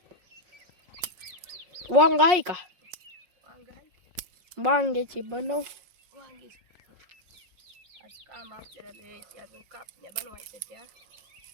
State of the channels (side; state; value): left; late; 5.5 ms